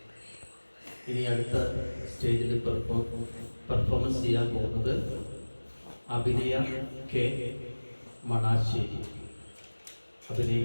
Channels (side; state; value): both; inverted; correlation -1.00